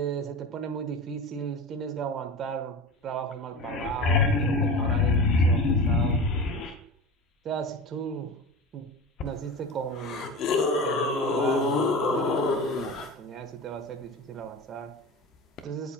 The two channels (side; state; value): both; normal; correlation 0.29